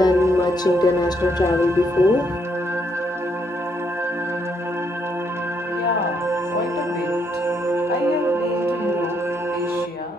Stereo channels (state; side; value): normal; both; correlation 0.74